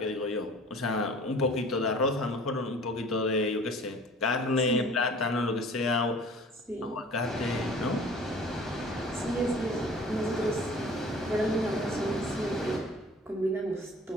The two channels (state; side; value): normal; both; correlation 0.47